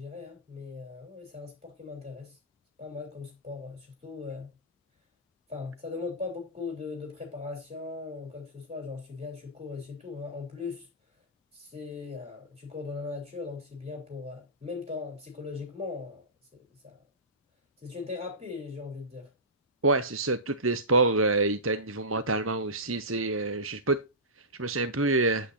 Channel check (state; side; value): normal; both; correlation -0.19